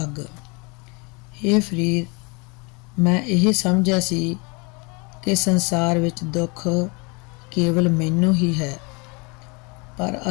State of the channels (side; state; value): right; quieter; 30.0 dB